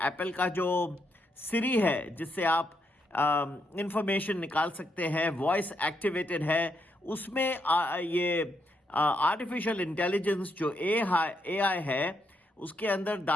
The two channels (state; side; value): normal; both; correlation 0.78